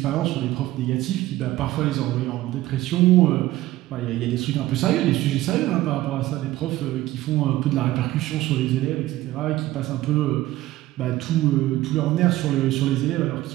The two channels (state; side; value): quieter; left; 16.2 dB